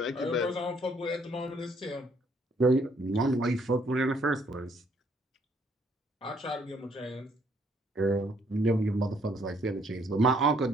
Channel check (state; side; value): normal; both; correlation 0.67